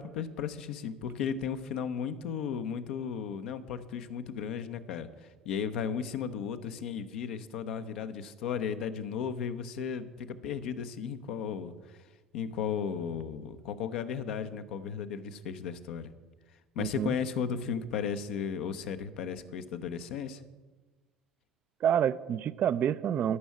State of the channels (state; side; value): normal; both; correlation 0.36